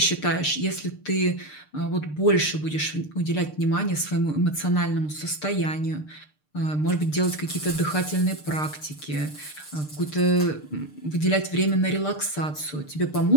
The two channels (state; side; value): late; right; 6.7 ms